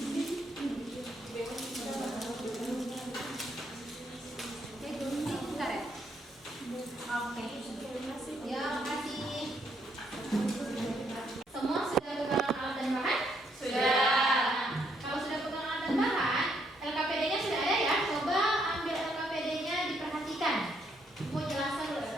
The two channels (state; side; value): normal; both; correlation 0.73